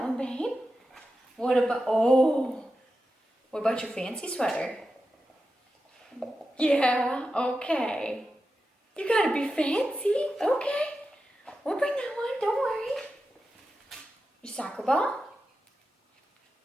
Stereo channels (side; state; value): both; normal; correlation 0.91